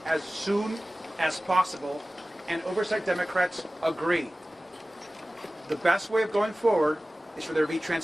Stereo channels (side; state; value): both; normal; correlation 0.97